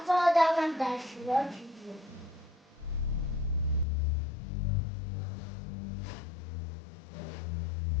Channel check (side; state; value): right; drops out; at 3.9 s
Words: that one that she's watching.